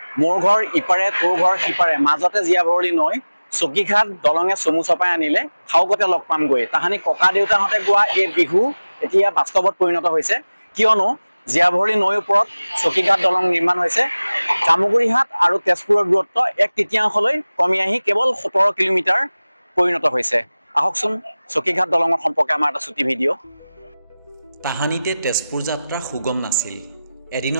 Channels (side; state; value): both; inverted; correlation -0.98